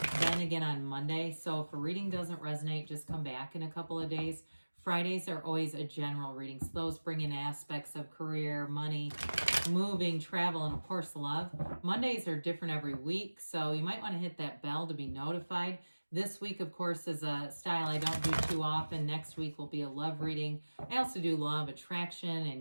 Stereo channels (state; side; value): inverted; both; correlation -1.00